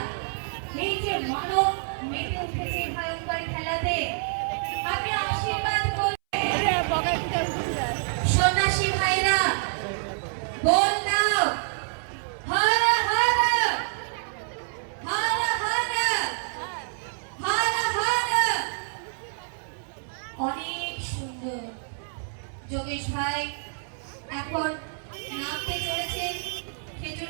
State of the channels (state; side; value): silent; left; 60 dB below the other